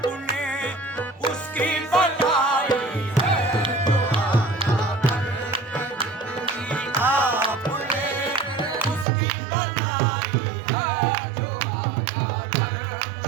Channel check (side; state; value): left; drops out; at 9.1 s